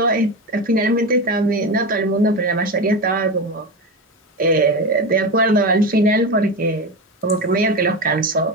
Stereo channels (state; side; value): normal; both; correlation 0.20